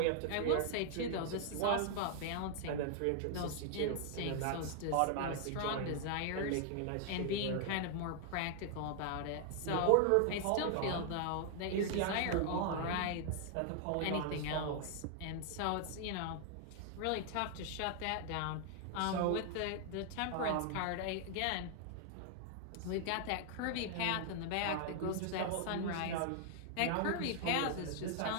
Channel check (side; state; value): both; different; correlation 0.00